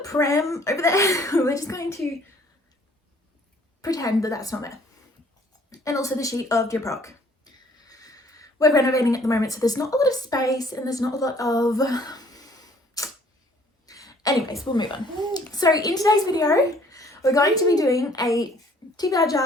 pram over there. We're just going to pretend that that's not there. And also the sheet of Dear Proc. We're renovating at the moment, so there's not a lot of space and there's not a lot of... Anyways, we'll move on. So in today's video, we're going to be doing a TBR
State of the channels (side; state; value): both; normal; correlation 0.58